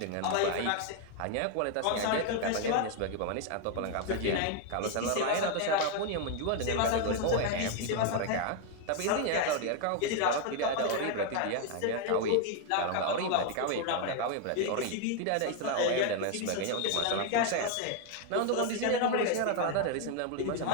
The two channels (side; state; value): both; different; correlation 0.01